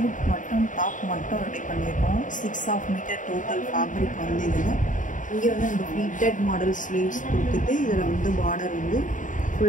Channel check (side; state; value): right; late; 0.37 ms